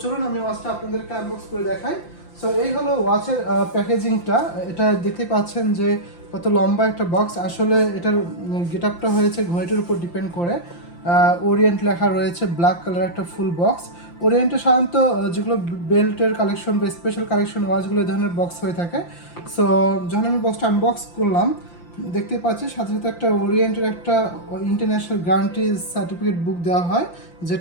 চলুন আমি ওয়াচটা আপনাদেরকে আনবক্স করে দেখাই। সো এই হলো ওয়াচের প্যাকেজিংটা। এটা দেখতে পাচ্ছেন যে কত লম্বা একটা বক্স। আসলে এটার গেট আপটা হয়েছে ঘড়িটার উপর ডিপেন্ড করে। ওরিয়েন্ট লেখা রয়েছে, ব্ল্যাক কালার একটা ফুল বক্স। ওরিয়েন্টে সাধারণত যেগুলো বেল্টের কালেকশন বা স্পেশাল কালেকশন ওয়াচগুলো এই ধরনের বক্স হয়ে থাকে। সো যখন আমি বক্সটা আনবক্স করলাম, দেখতে পাচ্ছি সাথে সাথে একটা ওরিয়েন্টের একটা ইন্টারন্যাশনাল গ্যারান্টি সার্টিফিকেট বুক দেওয়া হয়,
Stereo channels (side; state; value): right; late; 5.8 ms